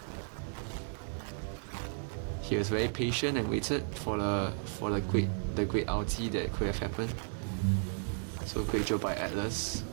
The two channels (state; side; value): silent; left; digital silence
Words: He was very patient and waited for the great ulti that could have happened. So great job by Atlas,